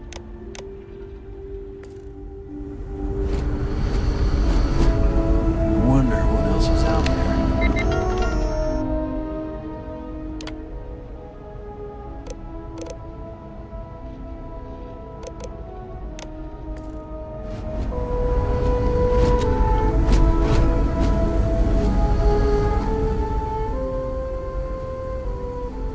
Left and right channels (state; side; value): identical; both; correlation 1.00